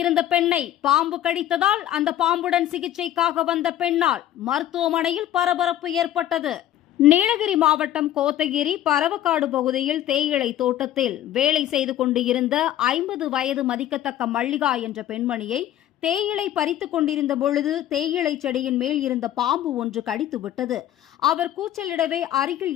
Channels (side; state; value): right; quieter; 12.2 dB